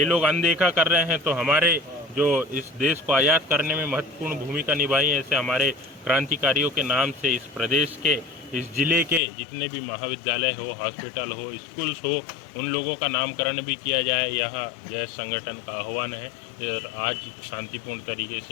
लोग अनदेखा कर रहे हैं, तो हमारे जो इस देश को आज़ाद करने में महत्वपूर्ण भूमिका निभाई है, ऐसे हमारे क्रांतिकारियों के नाम से इस प्रदेश के, इस ज़िले के जितने भी महाविद्यालय हो, हॉस्पिटल हो, स्कूल्स हो, उन लोगों का नामकरण भी किया जाए। यहाँ जय संगठन का आह्वान है और आज शांतिपूर्ण तरीके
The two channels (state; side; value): drops out; right; at 9.2 s